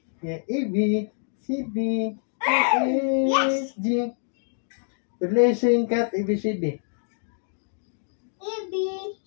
Yeah, A, B. C, D. E, Yes. G. Tuloy sing kat, A, B, C, D. A, B,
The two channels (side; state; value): right; silent; digital silence